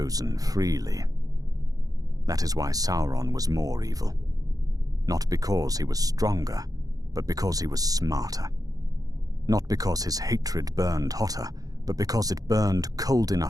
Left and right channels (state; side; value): late; left; 0.17 ms